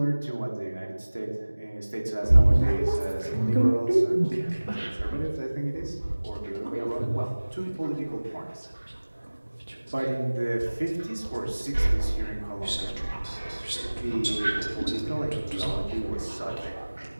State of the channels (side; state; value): both; inverted; correlation -1.00